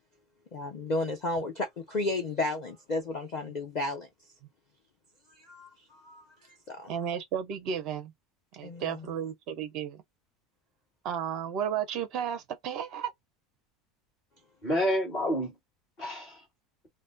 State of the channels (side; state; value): both; normal; correlation 0.37